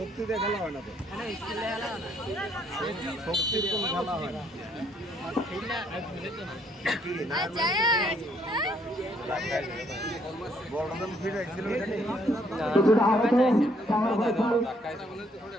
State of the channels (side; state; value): both; normal; correlation 0.68